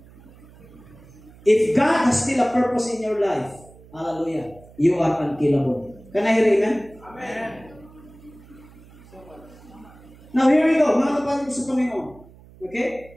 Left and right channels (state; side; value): noise; right; hum, 23 dB below the sound